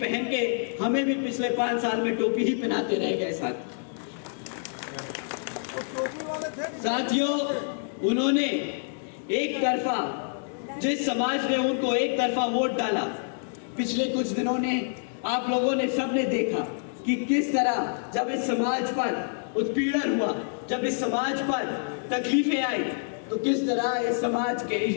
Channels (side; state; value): right; silent; digital silence